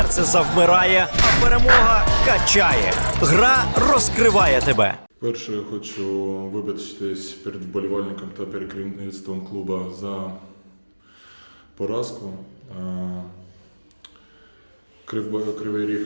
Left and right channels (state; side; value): inverted; both; correlation -1.00